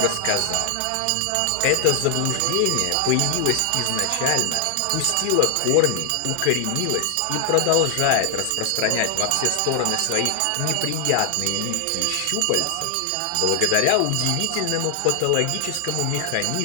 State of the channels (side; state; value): both; different; correlation 0.00